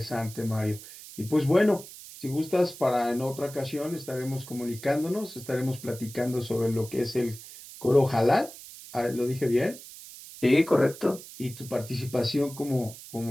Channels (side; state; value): right; noise; hiss, 16 dB below the sound